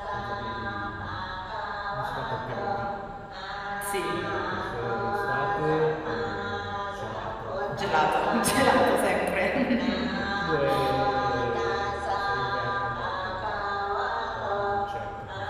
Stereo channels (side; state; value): both; identical; correlation 1.00